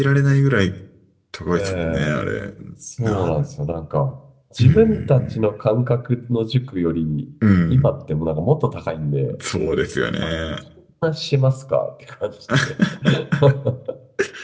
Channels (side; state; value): both; identical; correlation 1.00